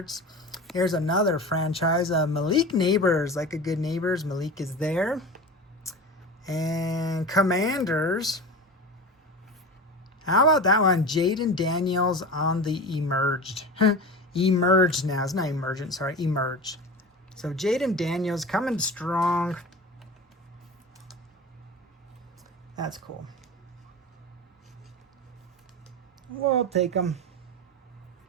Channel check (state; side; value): normal; both; correlation 0.30